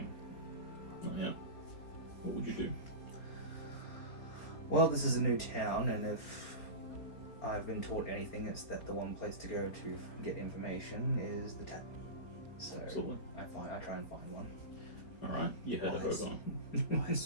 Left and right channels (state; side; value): late; right; 4.4 ms